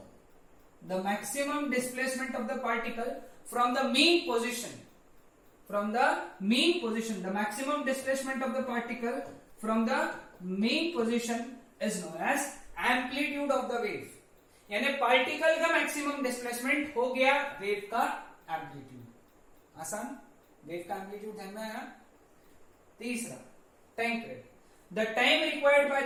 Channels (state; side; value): identical; both; correlation 1.00